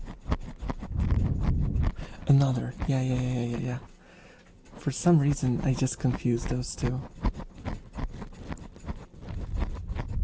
Another. Yeah. For some reason, I just confused those two.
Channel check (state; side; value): identical; both; correlation 1.00